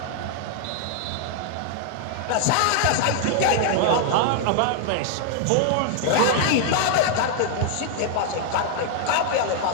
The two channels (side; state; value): both; different; correlation 0.00